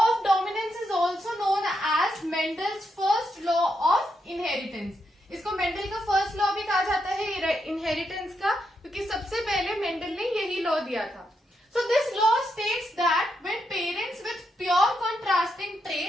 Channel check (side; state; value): both; normal; correlation 0.82